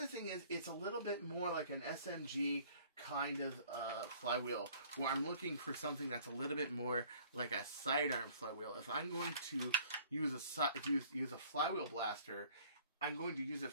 thing is, it's a little bit more like an SMG kind of flywheel, where I'm looking for something that's a little bit more like a sidearm flywheel. If I'm going to use a flywheel blaster, I'm going to use it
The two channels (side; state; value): both; inverted; correlation -0.54